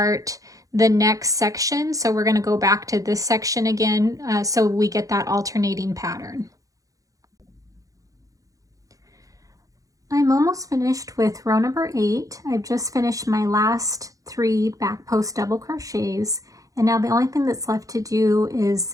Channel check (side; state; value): left; late; 0.17 ms